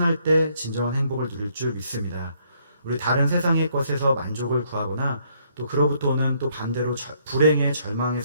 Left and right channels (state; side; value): inverted; both; correlation -0.69